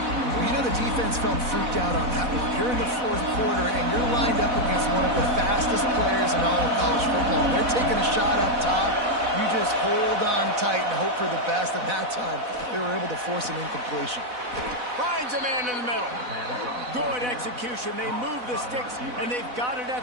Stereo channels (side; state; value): left; late; 4.0 ms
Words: Well, you know the defense felt freaked out on that one. You're in the 4th quarter, and you're lined up against one of the fastest players in all of college football. They're taking a shot up top. You just hold on tight and hope for the best. And that time, they were able to force an incompletion. Finds a man in the middle. Good execution. They move the sticks, and they've got it